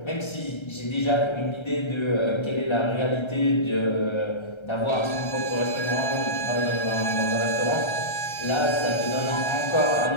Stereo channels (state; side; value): late; right; 1.3 ms